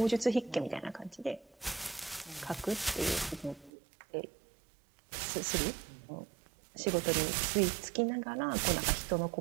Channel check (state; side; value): drops out; left; at 3.7 s